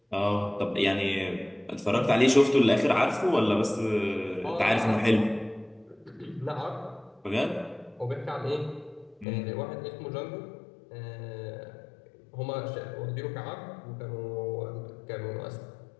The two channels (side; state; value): right; drops out; at 9.2 s